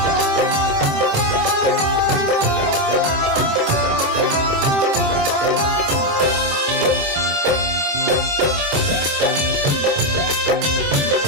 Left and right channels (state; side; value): late; left; 26 ms